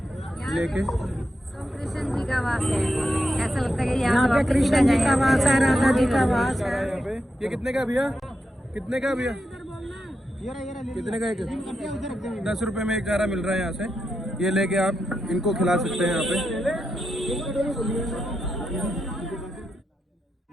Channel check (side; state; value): both; normal; correlation 0.85